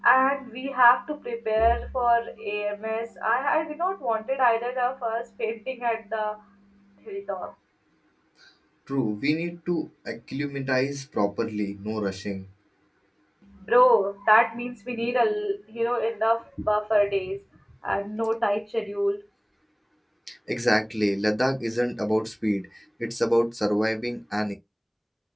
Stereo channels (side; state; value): both; identical; correlation 1.00